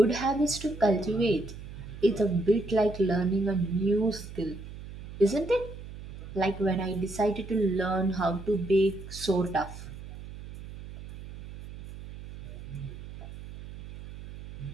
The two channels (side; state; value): right; noise; hum, 13 dB below the sound